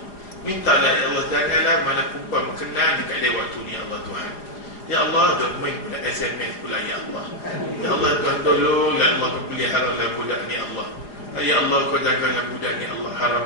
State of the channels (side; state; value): right; late; 4.9 ms